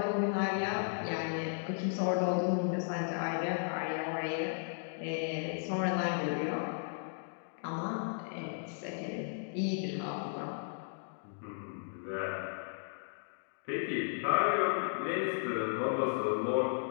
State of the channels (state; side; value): silent; right; digital silence